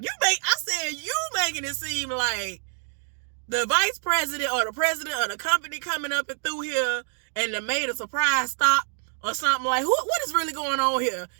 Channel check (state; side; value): silent; left; 61 dB below the other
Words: I said, you making it seem like the vice president or the president of the company coming up and through here and they made a surprise stop or something. Like, what is really going on here?